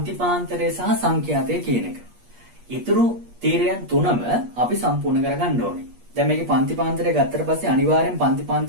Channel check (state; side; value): late; left; 8.4 ms